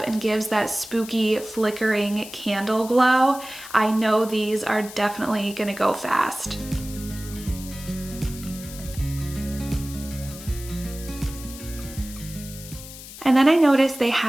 and gives that spooky flickering candle glow. I know these are definitely gonna go fast. And then I noticed they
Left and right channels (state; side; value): noise; left; hiss, 14 dB below the sound